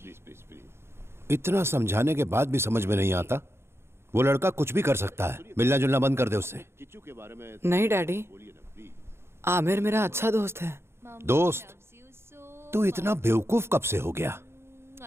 please please please. इतना समझाने के बाद भी समझ में नहीं आता। वो लड़का कुछ भी कर सकता है, मिलना जुलना बंद कर दे उससे। नहीं डैडी, आमिर मेरा अच्छा दोस्त है। दोस्त? तू इतना बेवकूफ कब से हो गया?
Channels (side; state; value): left; late; 0.12 ms